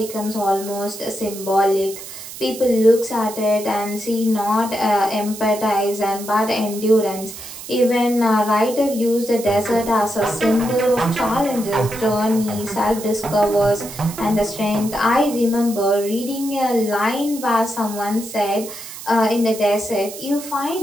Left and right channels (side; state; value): right; noise; hiss, 12 dB below the sound